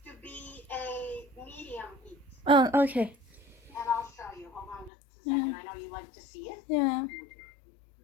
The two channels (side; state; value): right; drops out; at 4.9 s